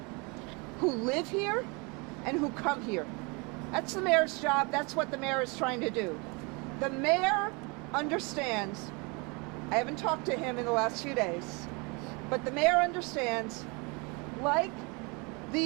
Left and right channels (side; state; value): left; quieter; 29.7 dB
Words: who live here and who come here. That's the mayor's job. That's what the mayor is trying to do. The mayor understands, I haven't talked to him in the last few days, but the mayor understands, like